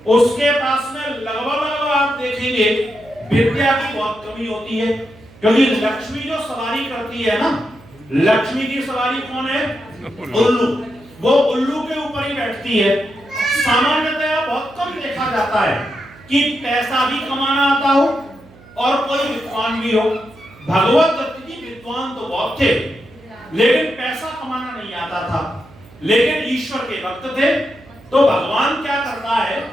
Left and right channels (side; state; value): right; noise; hum, 24 dB below the sound